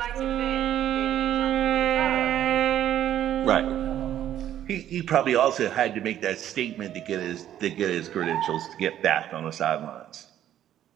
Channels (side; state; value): left; quieter; 11.4 dB